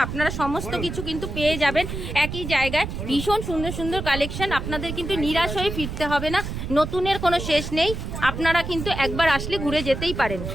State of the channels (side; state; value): right; noise; rumble, 6 dB below the sound